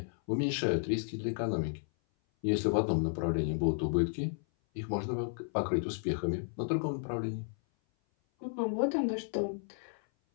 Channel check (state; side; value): silent; right; 56 dB below the other